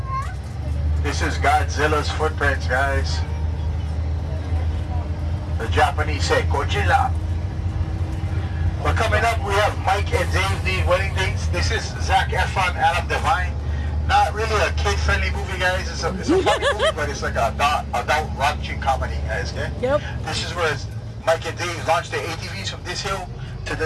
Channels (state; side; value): identical; both; correlation 1.00